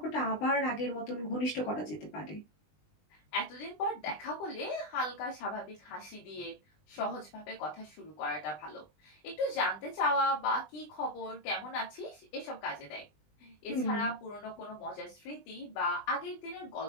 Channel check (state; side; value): late; right; 20 ms